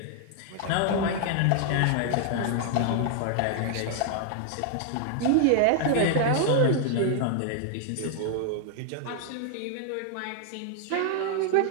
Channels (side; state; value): both; different; correlation 0.00